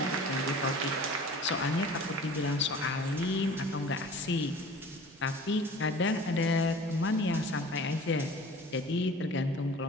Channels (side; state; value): both; normal; correlation 0.43